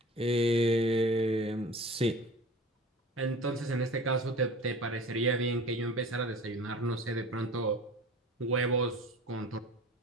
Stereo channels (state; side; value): normal; both; correlation 0.40